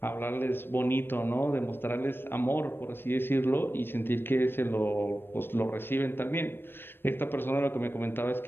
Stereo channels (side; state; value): right; late; 0.10 ms